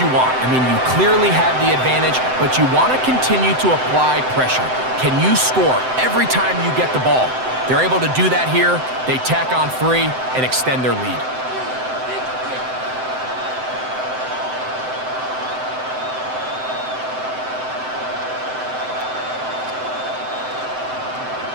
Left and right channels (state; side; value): late; left; 7.8 ms